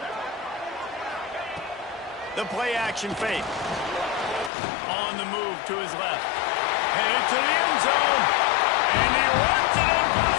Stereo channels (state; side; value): drops out; right; at 4.5 s